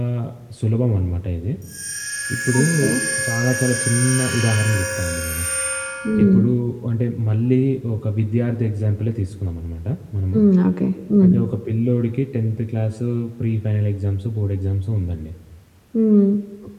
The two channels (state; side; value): identical; both; correlation 1.00